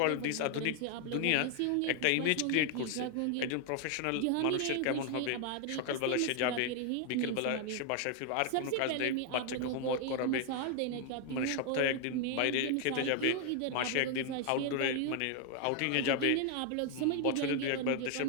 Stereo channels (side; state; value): both; different; correlation 0.00